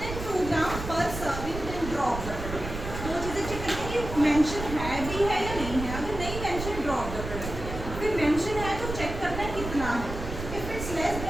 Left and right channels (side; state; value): right; noise; rumble, 7 dB below the sound